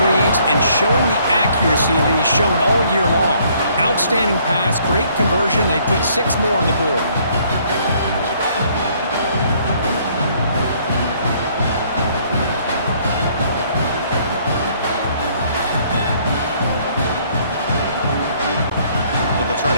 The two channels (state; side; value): inverted; both; correlation -0.63